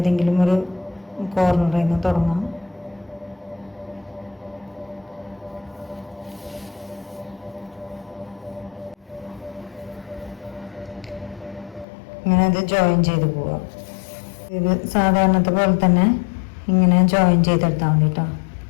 ഒരു കോർണറിൽ നിന്ന് തുടങ്ങാം. ഇങ്ങനെ ഇത് ജോയിൻ ചെയ്ത് പോവുക. ഇത് സാധാരണത്തെ പോലെ തന്നെ ഇങ്ങനെ ജോയിൻ ചെയ്തെടുത്താൽ മതി കേട്ടോ.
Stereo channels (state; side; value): drops out; right; at 11.9 s